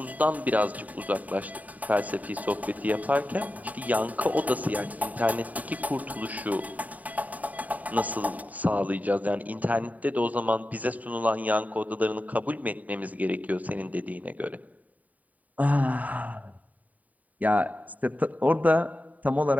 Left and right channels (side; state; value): left; late; 0.074 ms